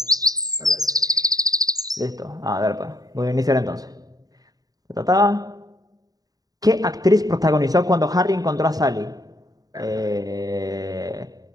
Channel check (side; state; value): left; late; 0.18 ms